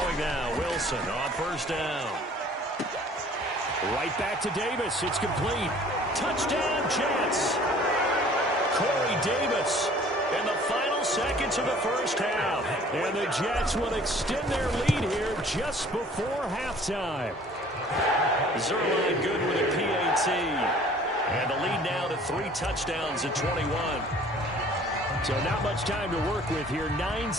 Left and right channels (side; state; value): both; normal; correlation 0.52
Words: now, Wilson on first down. Right back to Davis. It's complete. Touchdown, Jets. Corey Davis in the final seconds of the first half. And the Jets will extend their lead here just before halftime. Zerline good with a PAT. And the lead now to 3 touchdowns at 21. So not much time to work with here. 9